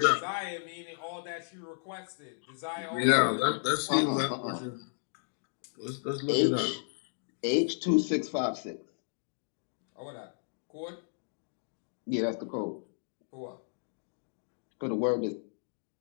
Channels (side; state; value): right; silent; digital silence